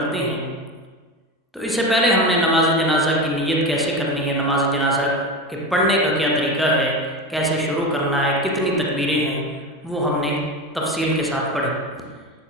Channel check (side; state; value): both; normal; correlation 0.23